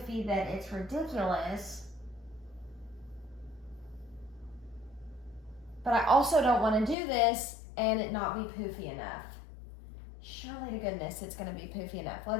that it's ridiculous. But I also don't want to do this and it not be poofy enough. Surely to goodness it's going to be poofy enough.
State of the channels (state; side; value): drops out; right; at 7.0 s